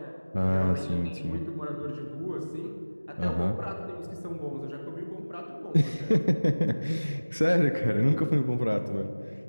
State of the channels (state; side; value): inverted; both; correlation -1.00